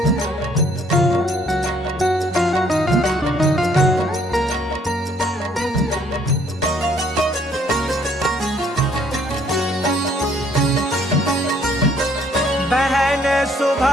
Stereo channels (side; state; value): both; normal; correlation 0.65